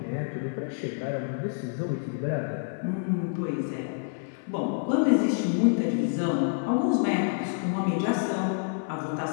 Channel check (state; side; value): silent; right; 59 dB below the other